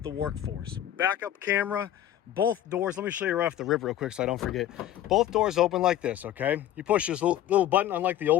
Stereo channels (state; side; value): quieter; right; 12.0 dB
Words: workforce. Backup camera, both doors. Let me show you right off the rip real quick so I don't forget. Both doors open like this, okay? You push this little button, unlike the